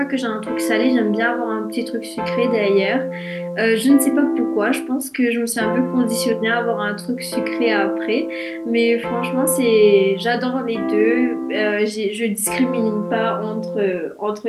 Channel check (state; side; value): identical; both; correlation 1.00